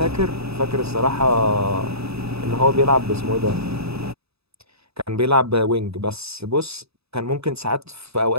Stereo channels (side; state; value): left; late; 0.78 ms